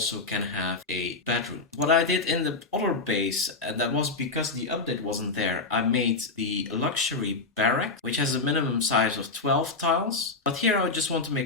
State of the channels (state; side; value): quieter; right; 3.8 dB